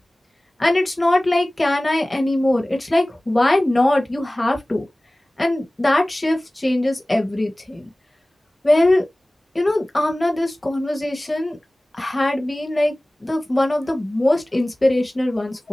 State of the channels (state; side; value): normal; both; correlation 0.98